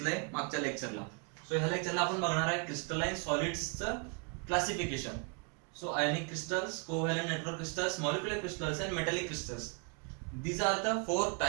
मागच्या लेक्चरला. सो ह्या लेक्चरला आपण बघणार आहे crystalline सॉलिड्सचं classification. So ionic crystals, covalent network crystals, molecular crystals and metallic crystals. These are the four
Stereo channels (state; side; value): quieter; left; 35.0 dB